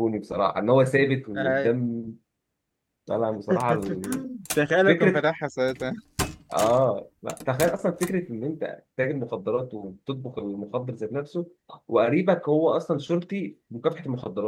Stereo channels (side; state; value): both; identical; correlation 1.00